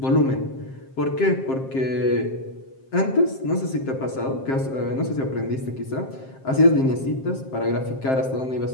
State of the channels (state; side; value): late; right; 7.6 ms